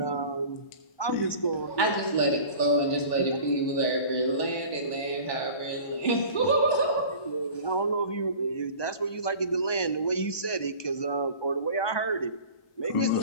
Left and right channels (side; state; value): right; late; 1.2 ms